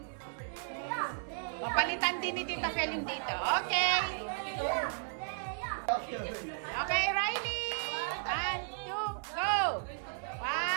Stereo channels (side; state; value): left; silent; 55 dB below the other